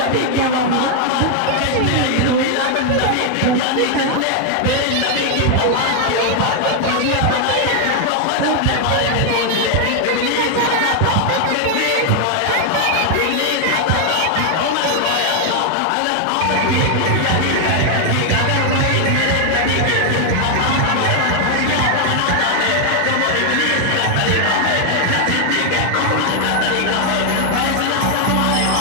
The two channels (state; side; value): different; both; correlation 0.00